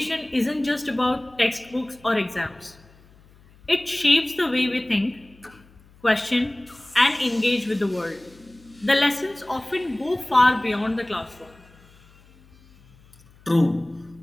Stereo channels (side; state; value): left; noise; hum, 27 dB below the sound